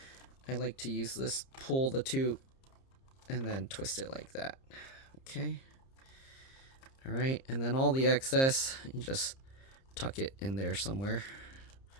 I like to use this, pull the two and then twist it like that. Okay, all right, and then all the excess, you just tuck it in there somewhere,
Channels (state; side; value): late; right; 30 ms